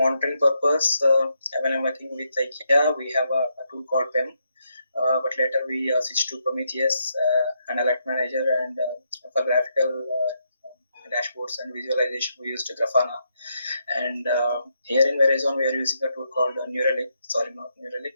purpose. When I'm working with IKEA, we have a tool called PEM, but later we switched to Prometheus and Alert Manager, and for graphical dashboards and visualization we used Grafana. And here in Verizon we are using a tool called Neuralink. Sorry, not Neuralink.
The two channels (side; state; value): both; inverted; correlation -0.80